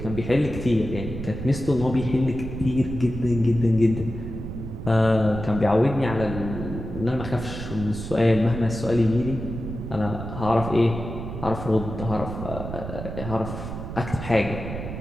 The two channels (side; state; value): right; noise; rumble, 8 dB below the sound